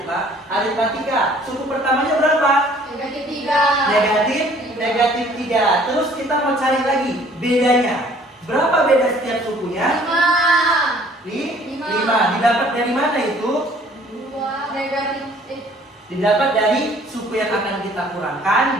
aritmatika. Suku pertamanya berapa? Negatif 3. Negatif 3. Terus kita mau cari lagi bedanya. Berapa beda setiap sukunya? 5. Didapat dari mana itu? 2 negatif. Didapat dari suku yang akan kita kurangkan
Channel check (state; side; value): normal; both; correlation 0.56